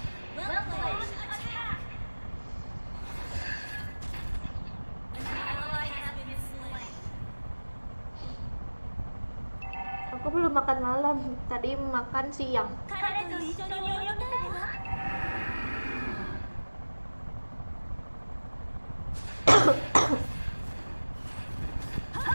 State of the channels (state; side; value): inverted; both; correlation -1.00